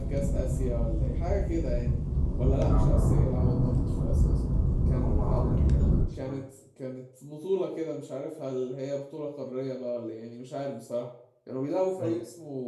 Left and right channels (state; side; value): identical; both; correlation 1.00